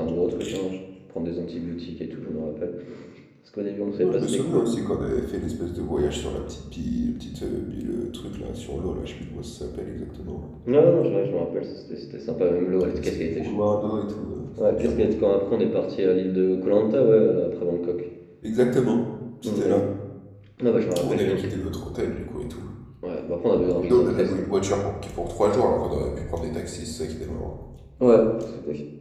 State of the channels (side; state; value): both; identical; correlation 1.00